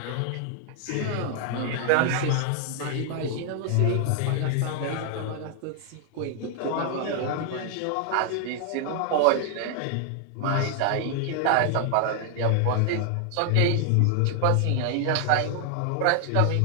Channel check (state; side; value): different; both; correlation 0.00